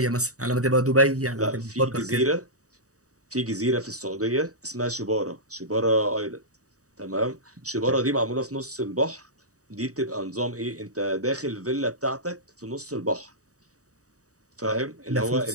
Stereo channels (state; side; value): late; left; 0.66 ms